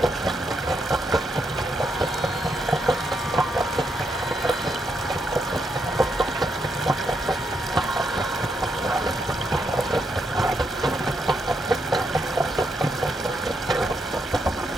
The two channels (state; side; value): normal; both; correlation 0.79